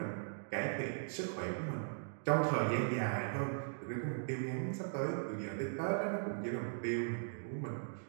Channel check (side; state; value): left; silent; digital silence